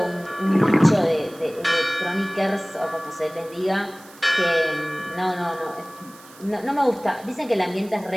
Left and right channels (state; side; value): noise; right; hiss, 23 dB below the sound